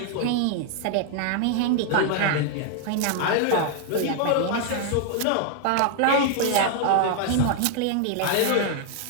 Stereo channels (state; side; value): different; both; correlation 0.00